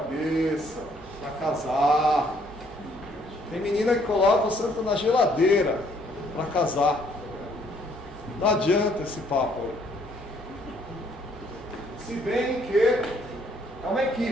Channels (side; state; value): both; normal; correlation 0.65